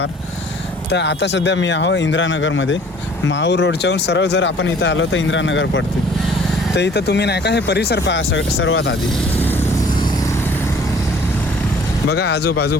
तर आता सध्या मी आहो इंदिरानगरमध्ये. माहूर रोडच्याहून सरळ जर आपण इथं आलो तर इंदिरानगर पडते. तर इथं तुम्ही नाही का हे परिसर पहा सर्वात आधी. बघा आजूबाजू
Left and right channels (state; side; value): normal; both; correlation 0.54